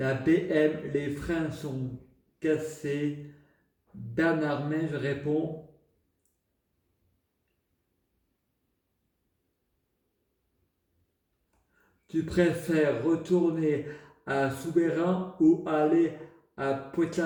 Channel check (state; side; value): identical; both; correlation 1.00